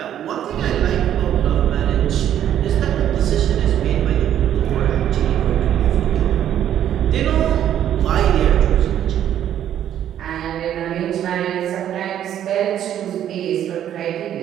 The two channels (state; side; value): quieter; left; 10.7 dB